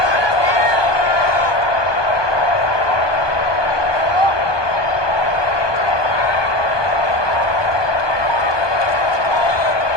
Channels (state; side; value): late; right; 1.2 ms